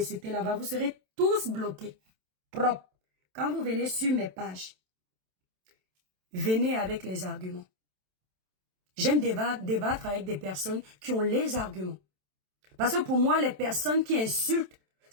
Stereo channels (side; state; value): left; late; 27 ms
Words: là-bas, vous serez tous bloqués. Propre. Quand vous venez sur mes pages, venez avec les arguments. J'aime débattre avec des personnes qui ont les arguments. Parce que pour moi, les personnes qui insultent